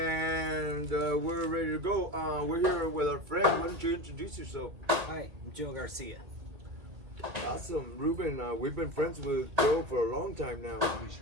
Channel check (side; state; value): left; late; 2.5 ms